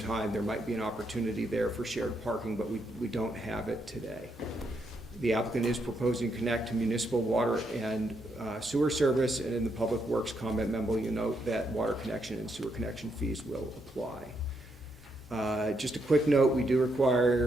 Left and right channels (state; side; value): normal; both; correlation 0.78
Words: there might be an opportunity there for shared parking, but we don't have it today. The applicant is proposing to connect to municipal water and sewer service, and in the Public Works comment memo, you note that water connection and sewer connection fees will apply. Just a quick note, we do